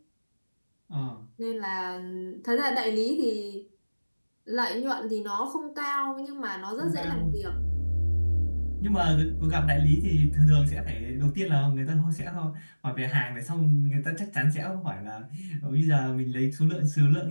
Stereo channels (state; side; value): inverted; both; correlation -1.00